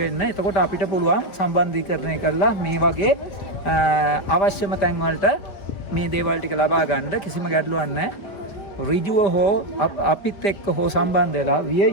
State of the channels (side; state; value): right; late; 5.0 ms